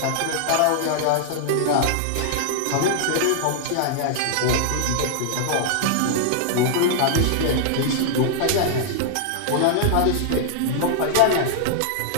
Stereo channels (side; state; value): both; different; correlation -0.01